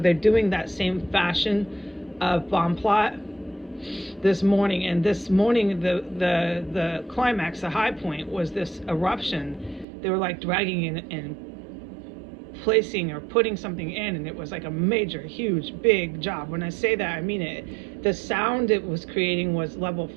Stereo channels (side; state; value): left; drops out; at 9.9 s